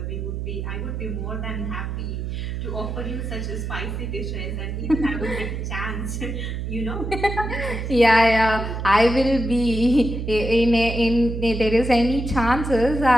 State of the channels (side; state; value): right; noise; hum, 4 dB below the sound